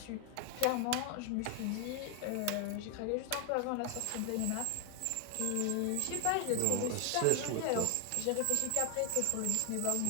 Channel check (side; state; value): both; different; correlation 0.00